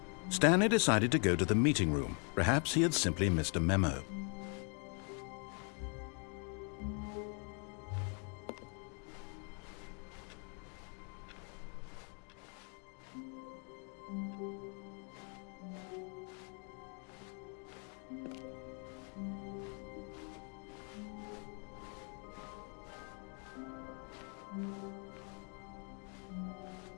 Stanley decided to go to the meeting room. Perhaps he had simply missed a memo.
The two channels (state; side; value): quieter; right; 39.9 dB